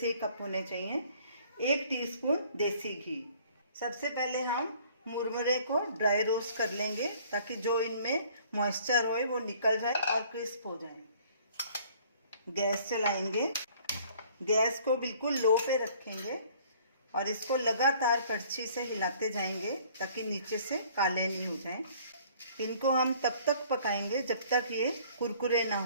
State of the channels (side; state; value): both; inverted; correlation -0.56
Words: ही कप होने चाहिए। 1 टीस्पून देसी घी। सबसे पहले हम मुरमुरे को ड्राई रोस्ट कर लेंगे ताकि जो इनमें मॉइस्चर हो वो निकल जाए और क्रिस्प हो जाए। गैस चलाएंगे, गैस को बिल्कुल लो पे रखेंगे और इसको लगातार कड़छी से हिलाते जाएंगे ताकि नीचे से काले नहीं हो जाएं। इनको हम तब तक पकाएंगे जब तक ये कुरकुरे ना